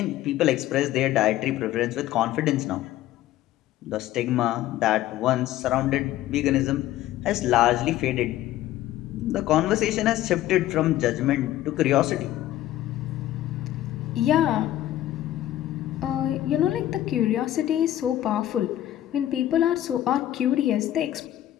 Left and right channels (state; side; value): quieter; right; 13.6 dB